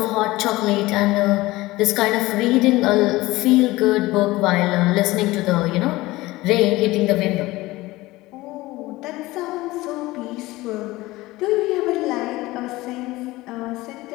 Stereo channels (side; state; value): right; quieter; 19.2 dB